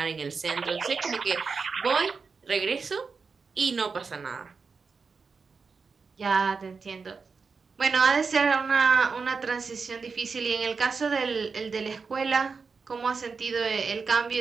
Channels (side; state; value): left; quieter; 4.9 dB